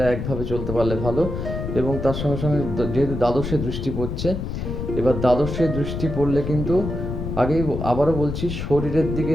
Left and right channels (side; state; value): left; noise; rumble, 5 dB below the sound